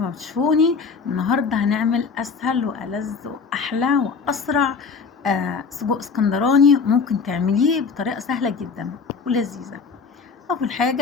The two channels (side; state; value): right; quieter; 5.2 dB